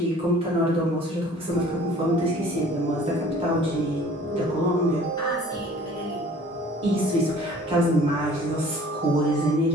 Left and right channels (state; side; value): normal; both; correlation 0.50